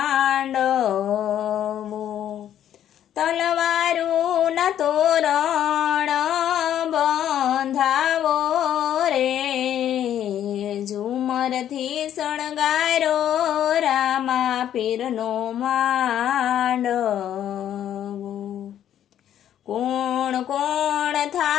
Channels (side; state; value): right; quieter; 10.7 dB